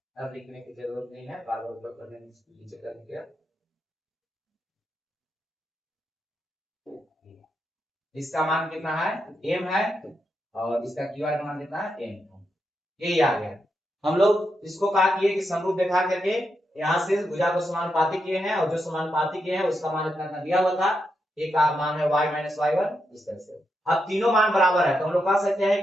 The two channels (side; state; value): both; normal; correlation 0.84